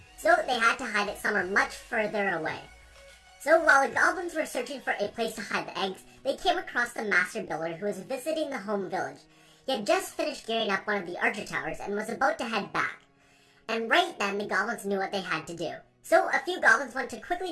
So they had to hide it somewhere much further away. So while the goblins were searching for a place to hide the eggs, they came across the master builder who was visiting the home village. He had just finished gearing up one of the archer towers and was about to head back. And right then, the goblins knew what they had to do. So a few goblins went to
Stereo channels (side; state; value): both; identical; correlation 1.00